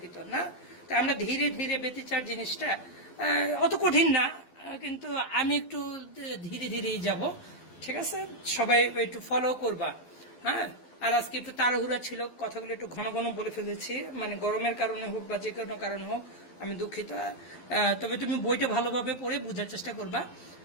না? তো আমরা ধীরে ধীরে ব্যতিচার জিনিসটা অত কঠিন না, কিন্তু আমি একটু ধীরে ধীরেই যাব, ঠিক আছে? সবাই একটু ফলো করবা, হ্যাঁ? আর আজকে একটু তাড়াহুড়া ছিল, কথাগুলো একটু ঘন ঘন বলে ফেলেছি, মানে গরমের কারণে হোক বা যে কোনো কারণে হোক, আমি দুঃখিত। তবে তুমি বইটা ভালোভাবে পড়ে বোঝার চেষ্টা করবা।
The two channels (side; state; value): right; late; 12 ms